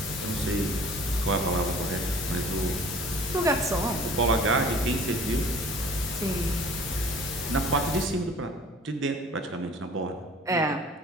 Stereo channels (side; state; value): both; normal; correlation 0.49